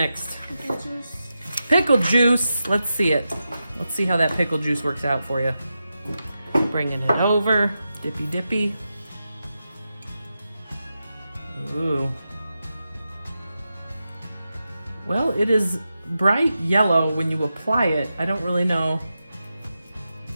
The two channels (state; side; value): inverted; both; correlation -0.90